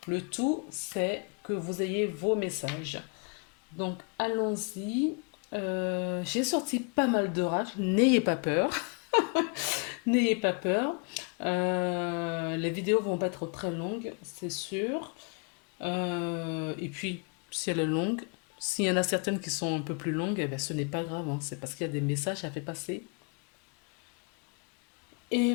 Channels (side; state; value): right; quieter; 34.8 dB